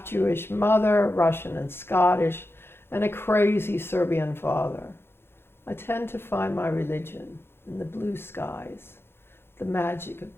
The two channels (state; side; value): late; right; 0.11 ms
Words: mother, Russian and Scottish, and a crazy Serbian father. I tend to find my religion in the blue skies, the magic of